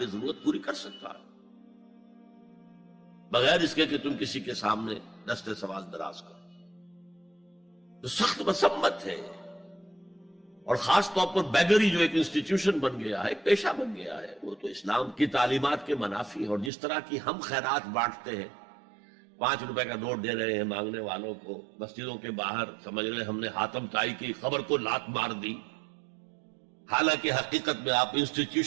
ضرورت پوری کر سکتا ہے، بغیر اس کے کہ تم کسی کے سامنے دستے سوال دراز کرو. تو سخت مذمت ہے، اور خاص طور پر بیگری جو ایک انسٹیٹیوشن بن گیا ہے، ایک پیشہ بن گیا ہے، وہ تو اسلام کی تعلیمات کے منافی ہے. اور جس طرح کی ہم خیرات بانٹتے ہیں، 5 روپے کا نوٹ دے رہے ہیں مانگنے والوں کو مسجدوں کے باہر، سمجھ رہے ہم نے حاتم طائی کی خبر کو لات مار دی، حالانکہ حقیقت میں آپ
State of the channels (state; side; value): drops out; left; at 16.7 s